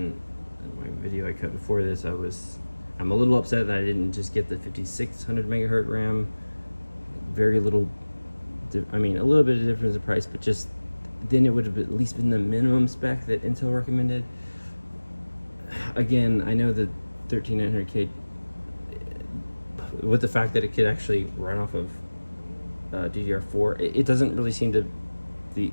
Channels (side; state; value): both; inverted; correlation -1.00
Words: in my video I cut before this, I'm a little upset that I didn't just get the 5600 megahertz RAM. Very little, I mean, a little bit of difference in price, but just then it would have at least been the minimum spec that Intel recommended. Again, I know the 13900K, with the fact that it could actually run off of DDR4, it doesn't really seem to,